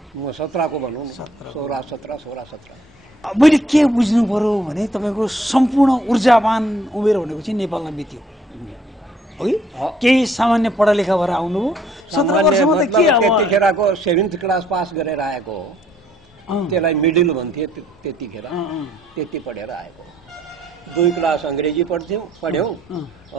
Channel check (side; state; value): both; normal; correlation 0.65